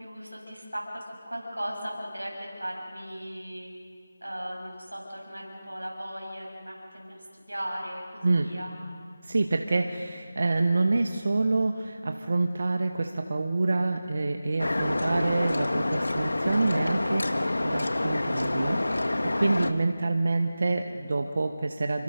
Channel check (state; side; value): inverted; both; correlation -0.96